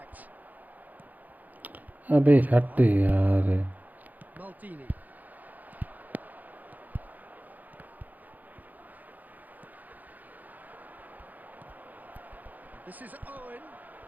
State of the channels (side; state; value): left; late; 0.081 ms